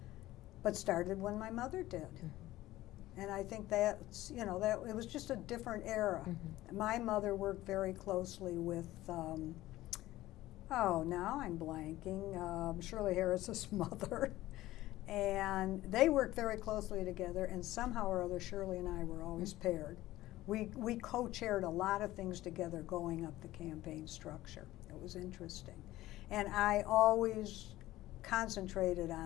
but started when my mother did. And I think that's, you know, that it was just a different era. My mother worked very closely with, now I'm blanking, Shirley Harris's mother. And they worked very closely together, and somehow or other Shirley and I were always paired. We co-chaired a lot of things together going up the campaign structure. It was interesting. And I always concentrated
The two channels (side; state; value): right; quieter; 16.1 dB